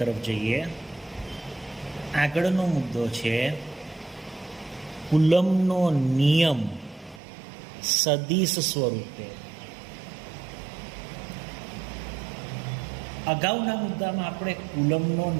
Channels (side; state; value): left; drops out; at 7.2 s